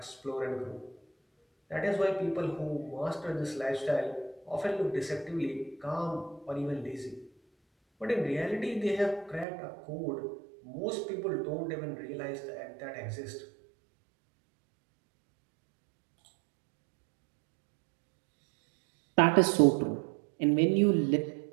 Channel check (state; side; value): drops out; left; at 9.5 s